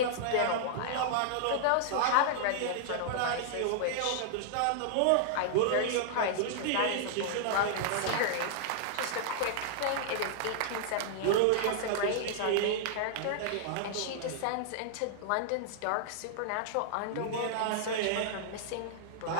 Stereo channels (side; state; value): both; different; correlation -0.01